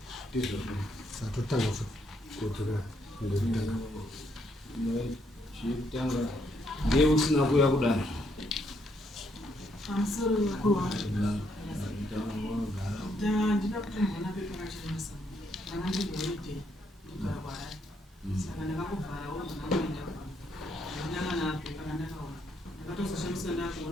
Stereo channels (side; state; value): both; normal; correlation 0.74